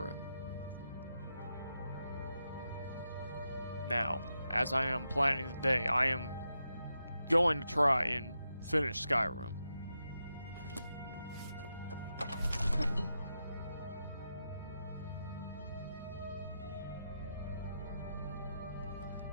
Now, as I am planning today, I am going to try and finish Skyrim.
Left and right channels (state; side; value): inverted; both; correlation -0.86